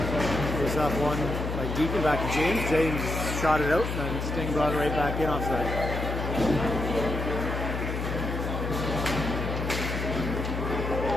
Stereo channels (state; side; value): noise; left; hum, 3 dB below the sound